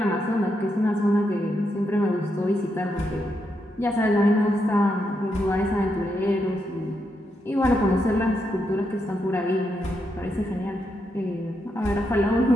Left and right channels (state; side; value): normal; both; correlation 0.82